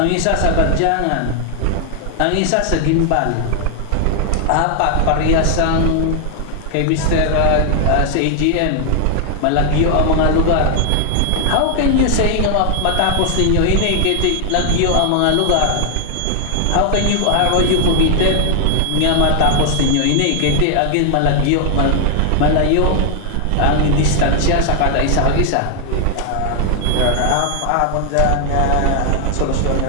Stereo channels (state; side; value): different; both; correlation 0.00